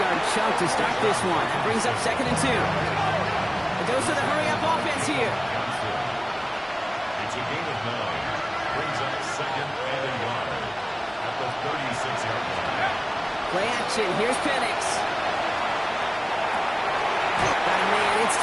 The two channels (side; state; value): both; identical; correlation 1.00